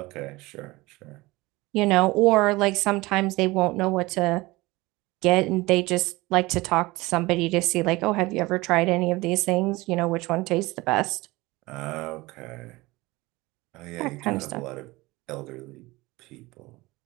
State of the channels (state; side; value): quieter; left; 21.1 dB